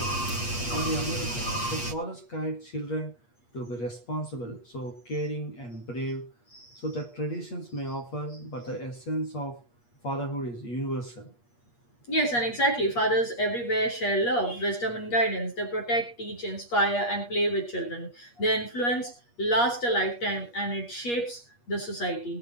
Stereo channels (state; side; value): late; right; 8.4 ms